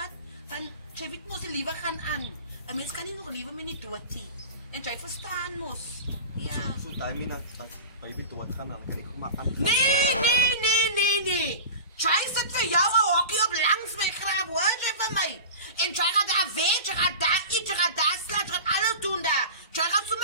van, jy weet mos die liewe gaan aan. Een mens kan nie nog liewe met nie dood nie. En jy verstaan mos. Ja. Zo timing dat baby doodgaan, dan kan ik maar aan. Nee. Jy sit vir jou 'n hokkie op langs my graf, hoor jy van my? En jy gaan daar weg, jy gaan daar eet, jy gaan daar slaap, jy gaan alles doen daar. Jy gaan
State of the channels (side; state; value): both; inverted; correlation -0.32